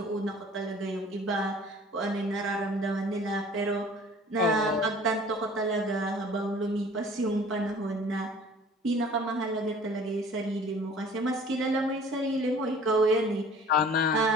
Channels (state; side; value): normal; both; correlation 0.49